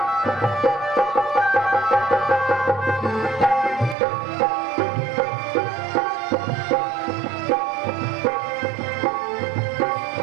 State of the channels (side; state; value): left; drops out; at 4.0 s